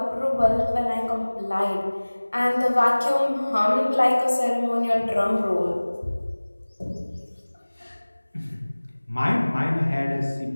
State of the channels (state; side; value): inverted; both; correlation -1.00